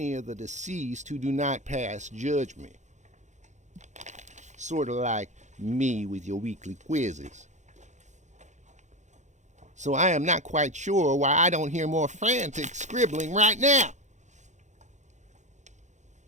of the deceased who do not pass judgment. Sort of like me with your weekly quizzes. So I am not quite sure why I don't hear more frantic scribbling right now.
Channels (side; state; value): left; late; 0.34 ms